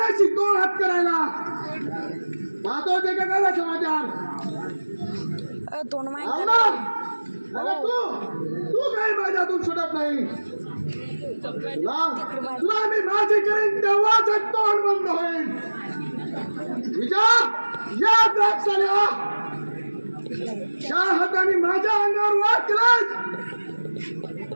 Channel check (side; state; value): both; inverted; correlation -1.00